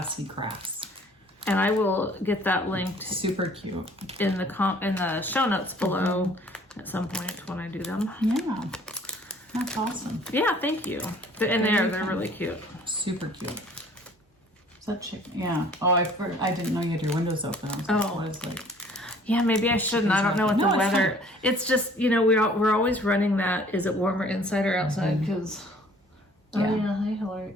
Crafts. And I will get that linked. Super cute. In the show notes below at some point when I do them. Yeah. That's awesome. Yeah, thank you. And they're really cute. Super cute. Is that chicken? Yeah. Oh, I didn't know you had your windows open. What is like? Yeah, maybe I shouldn't. I don't know what the weather. It's just, you know, we're always running that. Is it warmer inside or outside? Because hi Hillary.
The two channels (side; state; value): both; normal; correlation 0.54